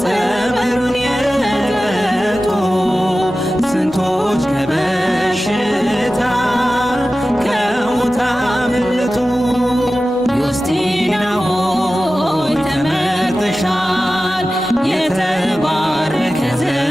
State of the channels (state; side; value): normal; both; correlation 0.95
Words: ጸበሉን የጠጡ ስንቶች ከበሽታ ከሞት አመለጡ። ዮስቲና ሆይ ተመርጠሻል፣ የተባረከ